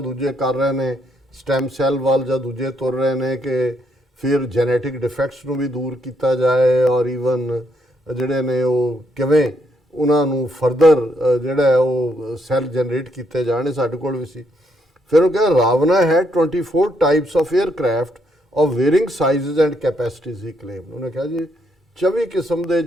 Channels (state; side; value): normal; both; correlation 0.75